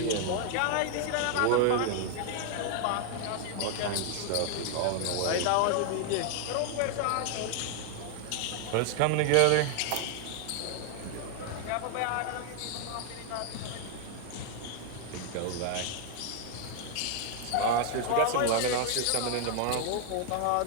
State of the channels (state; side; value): different; both; correlation 0.00